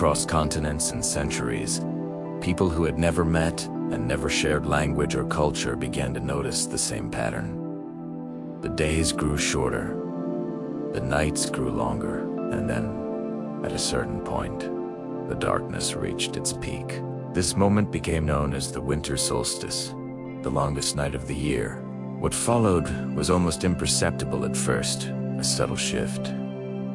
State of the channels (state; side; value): identical; both; correlation 1.00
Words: continents and centuries, people who had never met and never shared language or culture began to notice the same pattern. The days grew shorter, the nights grew longer, and then, at a certain point, the darkness reached its peak. This moment became known as the winter solstice, the longest night of the year. What followed was almost imperceptible at first, a subtle shift,